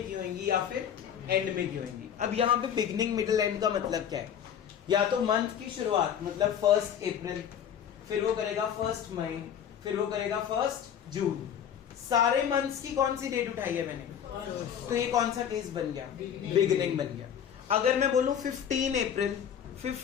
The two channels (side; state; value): right; quieter; 8.8 dB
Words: की होंगी, या फिर एंड में की होंगी। अब यहाँ पे बिगिनिंग मिडिल एंड का मतलब क्या है? या तो मंथ की शुरुआत मतलब 1 अप्रैल, फिर वो करेगा 1 मई, फिर वो करेगा 1 जून। सारे मंथ्स की कौन सी डेट उठाई है मैंने? तो ये कौन सा केस बन गया? बिगिनिंग बन गया। अगर मैं बोलूं 15 अप्रैल,